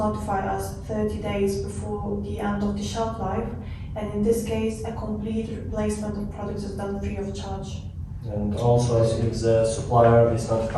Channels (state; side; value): identical; both; correlation 1.00